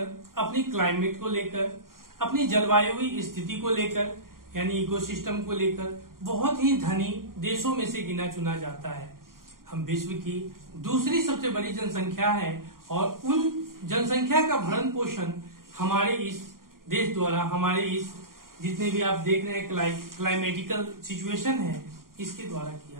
अपनी क्लाइमेट को लेकर, अपनी जलवायु स्थिति को लेकर, यानी इकोसिस्टम को लेकर बहुत ही धनी देशों में से गिना चुना जाता है। हम विश्व की दूसरी सबसे बड़ी जनसंख्या है और उन जनसंख्या का भरण पोषण हमारे इस देश द्वारा, हमारे इस जितने भी आप देख रहे हैं क्लाइमेटिकल सिचुएशन है, इसके द्वारा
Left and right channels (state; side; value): late; left; 0.91 ms